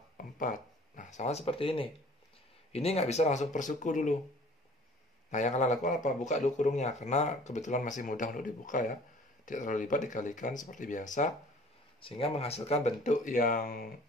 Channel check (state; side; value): normal; both; correlation 0.50